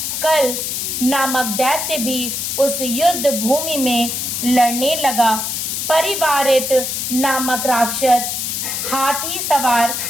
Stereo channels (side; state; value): left; noise; hiss, 2 dB below the sound